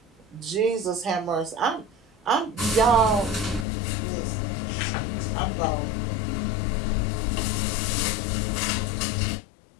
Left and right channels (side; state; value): right; drops out; at 3.7 s